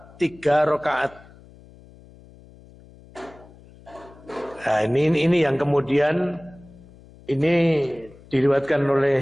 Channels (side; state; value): left; noise; hum, 23 dB below the sound